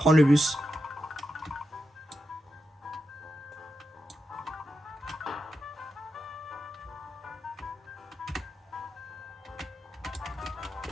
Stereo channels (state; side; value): normal; both; correlation 0.87